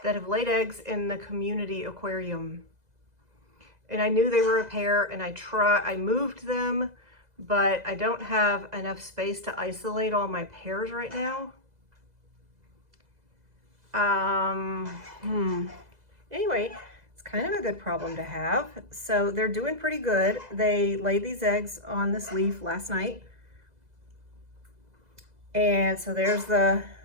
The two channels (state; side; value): late; left; 2.0 ms